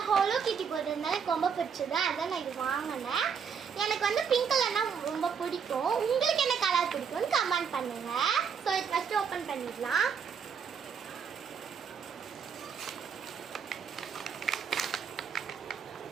ஹோலோ கிட்டி போட்டிருந்தாலும் எனக்கு ரொம்ப பிடிச்சது. அதான் நான் இது வாங்கினேன். எனக்கு வந்து பிங்க் கலர்னா ரொம்ப பிடிக்கும். உங்களுக்கு என்ன கலர் பிடிக்கும்னு கமெண்ட் பண்ணுங்க. ஸோ இது ஃபஸ்ட்டு ஓப்பன் பண்ணிடலாம்.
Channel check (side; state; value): left; quieter; 6.7 dB